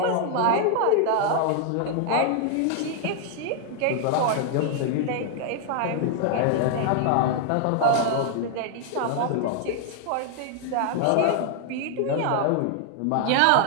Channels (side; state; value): both; different; correlation 0.00